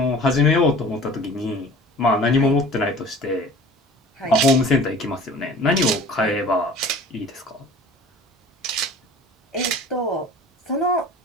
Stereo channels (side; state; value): both; normal; correlation 0.43